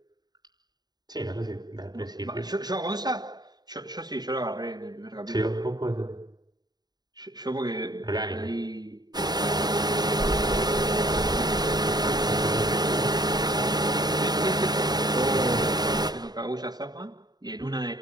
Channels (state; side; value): late; left; 0.20 ms